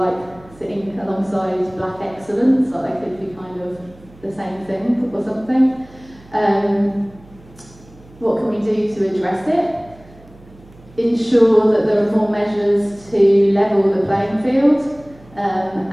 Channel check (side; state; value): right; noise; hum, 24 dB below the sound